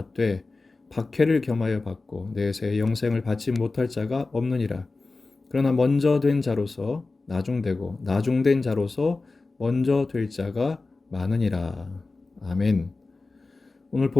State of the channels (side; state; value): right; quieter; 3.6 dB